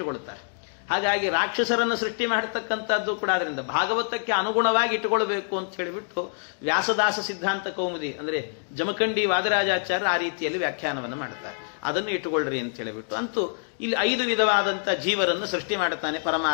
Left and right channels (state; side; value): silent; right; digital silence